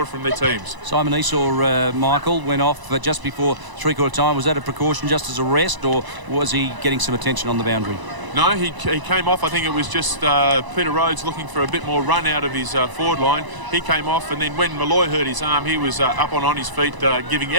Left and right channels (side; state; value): left; late; 1.0 ms